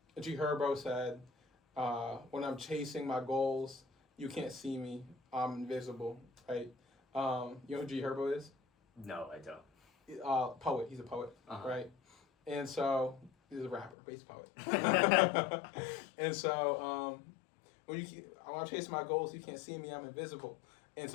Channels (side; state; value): right; drops out; at 14.0 s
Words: G Herbo said, when I'm chasing my goals, you can't see me, I'm invisible, right? You know who G Herbo is? No, I don't. Poet, he's a poet, right? And so, he's a rapper, but he's a poet. And so, when I'm chasing my goals, you can't see me, I'm invisible. And